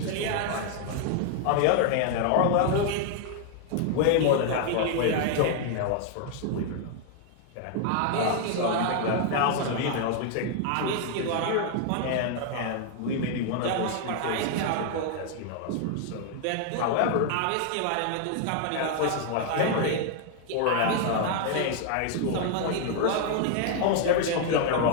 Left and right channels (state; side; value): different; both; correlation 0.00